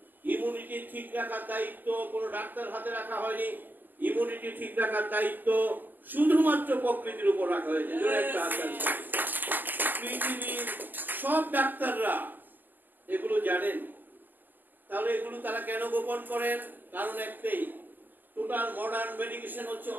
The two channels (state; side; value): late; left; 0.090 ms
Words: ইমিউনিটি ঠিক রাখার দায়িত্ব কোনো ডাক্তার হাতে রাখা হয়নি। ইমিউনিটি ঠিক রাখার দায়িত্ব শুধুমাত্র প্রকৃতির উপর রাখা হয়েছে। পৃথিবীর সব ডাক্তাররা এগুলো জানেন। তাহলে এগুলো তারা কেন গোপন করেন? কারণ একটাই, টোটাল মডার্ন মেডিকেশন হচ্ছে